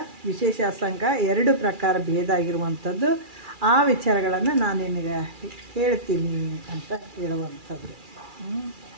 ವಿಶೇಷ ಅಸಂಗ 2 ಪ್ರಕಾರ ಭೇದ ಆಗಿರುವಂಥದ್ದು. ಆ ವಿಚಾರಗಳನ್ನು ನಾನು ನಿನಗೆ ಹೇಳ್ತೀನಿ ಅಂತ ಹೇಳುವಂಥದ್ದು.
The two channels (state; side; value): late; left; 2.4 ms